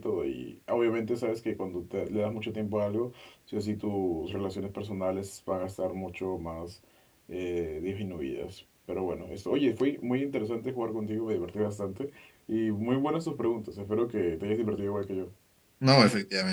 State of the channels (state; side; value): identical; both; correlation 1.00